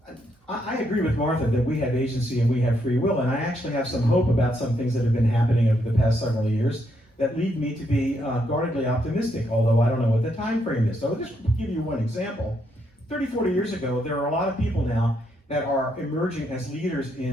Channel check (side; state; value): both; normal; correlation 0.76